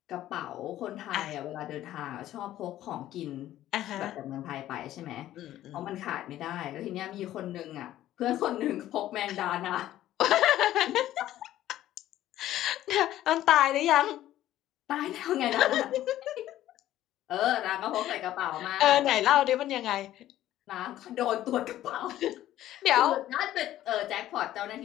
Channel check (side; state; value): right; quieter; 13.5 dB